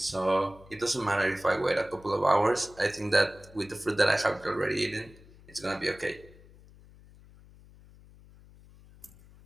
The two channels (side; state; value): left; noise; hum, 23 dB below the sound